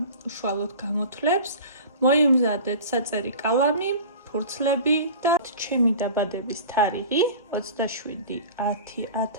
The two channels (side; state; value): both; inverted; correlation -0.37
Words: უშუალოდ გამოთვლებს. მოიმზადეთ საწერი კალამი, ფურცლები და ჩემი დაბადების თარიღი